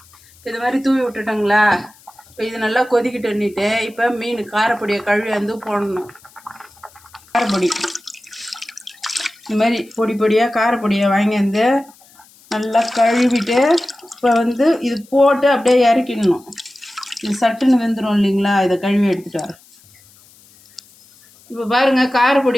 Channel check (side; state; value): left; noise; hiss, 27 dB below the sound